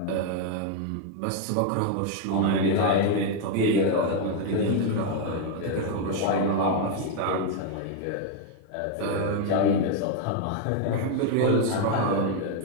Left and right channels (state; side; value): different; both; correlation 0.01